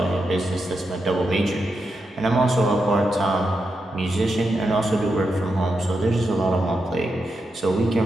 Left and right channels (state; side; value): normal; both; correlation 0.86